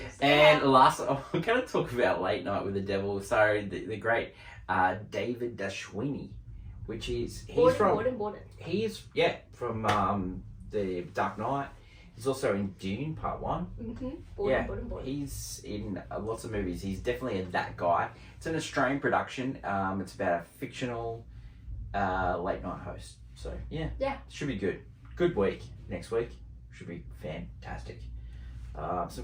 And last, I'm going to talk about Late Night with the Devil. Sorry, the great David Dashwini, which is he's from the Dark Knight. He's also in Dune Part 1. He's in lots of movies. He's definitely that guy. It's an Australian production. It's about a fictional late night host. So yeah, should be good. Good week next week. Should be fantastic.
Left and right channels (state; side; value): identical; both; correlation 1.00